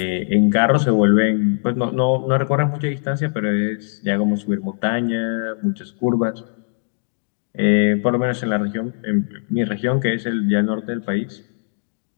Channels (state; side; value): silent; right; digital silence